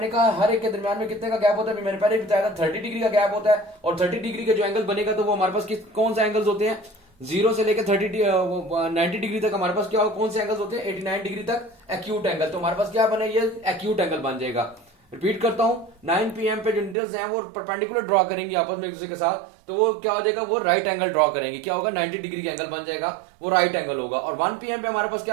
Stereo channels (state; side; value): drops out; left; at 16.9 s